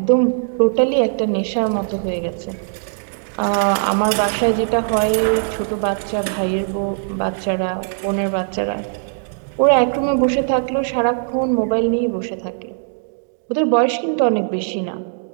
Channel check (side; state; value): left; silent; digital silence